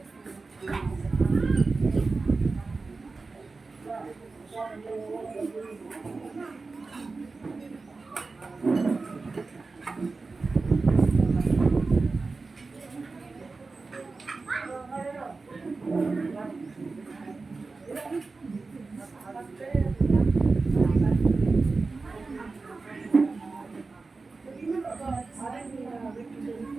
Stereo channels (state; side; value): quieter; left; 3.9 dB